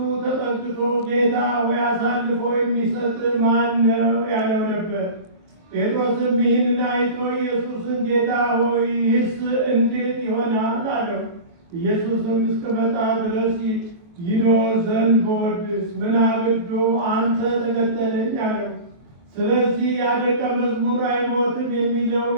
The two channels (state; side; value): late; left; 23 ms